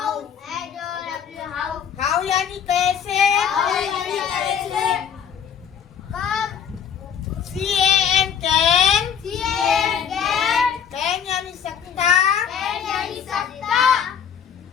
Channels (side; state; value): right; quieter; 8.0 dB